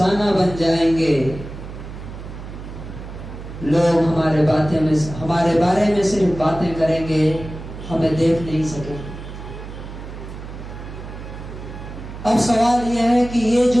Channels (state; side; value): noise; right; hum, 11 dB below the sound